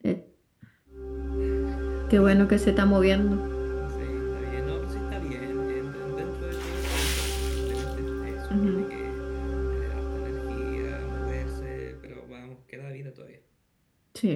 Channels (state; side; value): identical; both; correlation 1.00